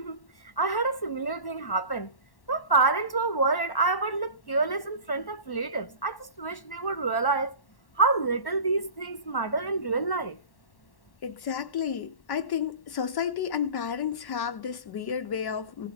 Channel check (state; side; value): late; right; 1.1 ms